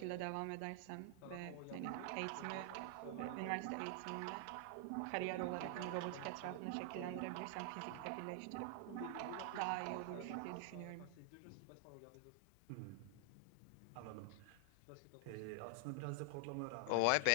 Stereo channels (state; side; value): different; both; correlation 0.00